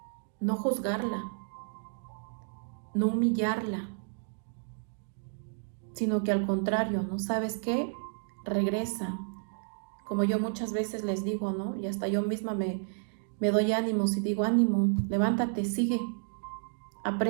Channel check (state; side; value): silent; left; digital silence